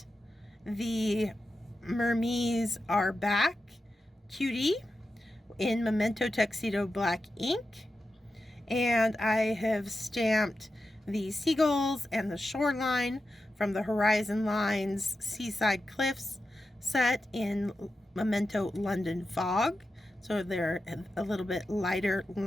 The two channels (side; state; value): both; normal; correlation 0.91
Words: the Mermees Are Back cutie in Memento Tuxedo Black ink, and I have stamped the seagulls and the shoreline from the Horizon Lines Seaside Cliffs set in Memento London Fog, so they're a little bit lighter